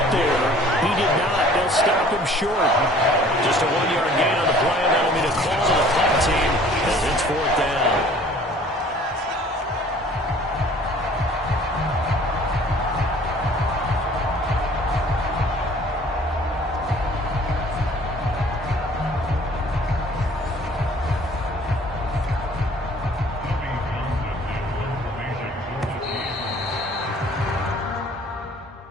there. He did not. They'll stop him short. Just a 1-yard gain on the play, and that'll be the call to the punt team as it's 4th down.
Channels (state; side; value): normal; both; correlation 0.52